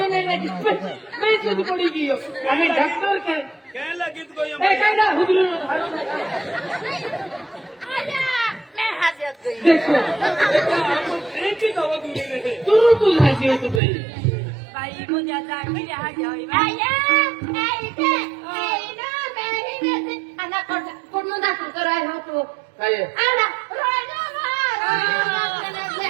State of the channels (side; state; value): left; drops out; at 13.8 s